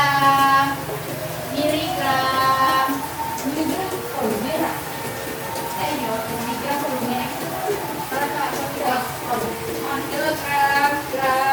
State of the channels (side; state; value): both; identical; correlation 1.00